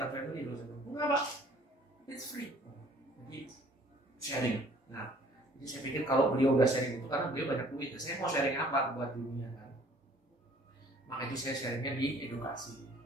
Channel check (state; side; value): normal; both; correlation 0.56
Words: family loh. Enggak Pak, it's free. Jadi sharing. Nah, jadi saya pikir kalau beliau udah sharing itu karena beliau banyak duit, saya mau sharing apa buat dunia kan? Maka itu saya sharingnya di edukasi.